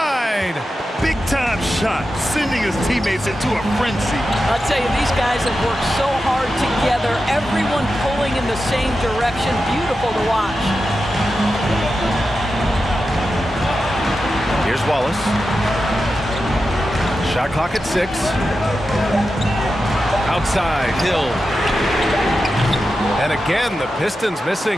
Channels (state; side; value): normal; both; correlation 0.91